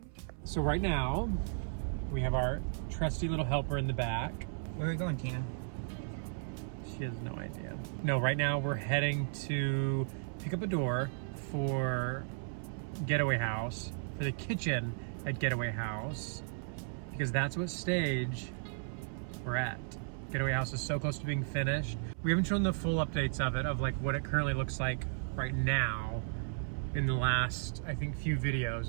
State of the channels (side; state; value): left; silent; 55 dB below the other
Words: So right now, we have our trusty little helper in the back. Where are we going, Tina? She has no idea. No, right now we're heading to pick up a door for Getaway House, for the kitchen at Getaway House, because that's what stage we're at. Getaway House is so close to being finished. We haven't shown the full updates of it, of like what it currently looks like right now in the last, I think, few